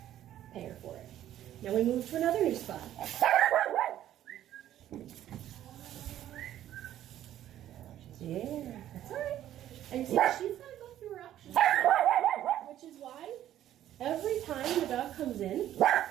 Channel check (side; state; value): left; quieter; 12.1 dB